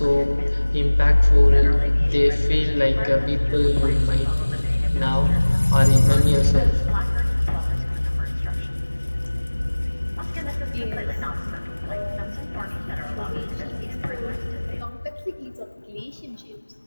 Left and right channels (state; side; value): inverted; both; correlation -1.00